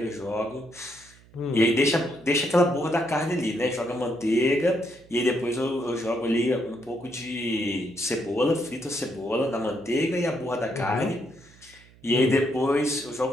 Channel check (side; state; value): right; noise; hum, 26 dB below the sound